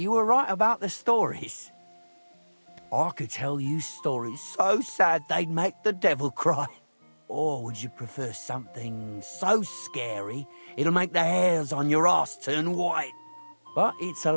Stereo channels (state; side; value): inverted; both; correlation -1.00